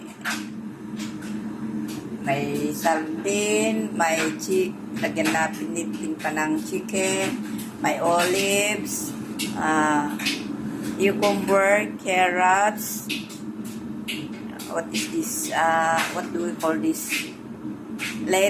sardine, may lagyan na pinitin pa ng chicken, may olives, cucumber, carrots, what is this, what do we call this,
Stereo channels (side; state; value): both; identical; correlation 1.00